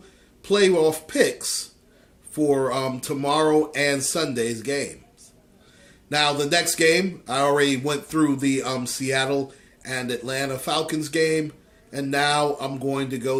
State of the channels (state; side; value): identical; both; correlation 1.00